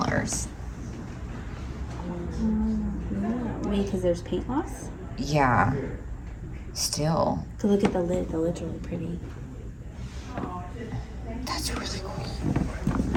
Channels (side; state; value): both; identical; correlation 1.00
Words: Maybe because there's paint loss? Yeah. Still. So look at the lid. The lid's really pretty. That's really